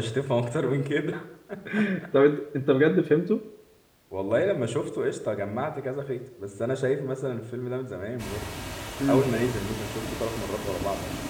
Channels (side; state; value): both; identical; correlation 1.00